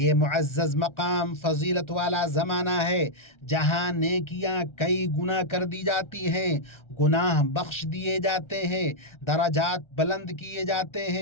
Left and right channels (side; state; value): right; late; 1.3 ms